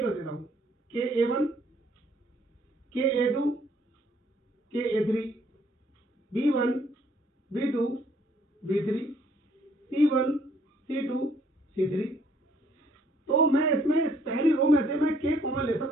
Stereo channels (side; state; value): both; normal; correlation 0.64